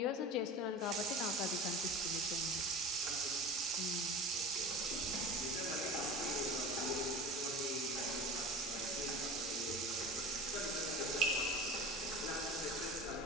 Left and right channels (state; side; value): normal; both; correlation 0.34